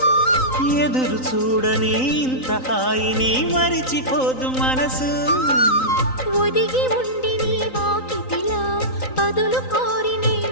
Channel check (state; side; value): late; right; 3.9 ms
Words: ఎదురు చూడని ఇంత హాయిని మరిచిపోదు మనసు. ఒదిగి ఉండి నీ వాకిటిలో బదులు కోరి నే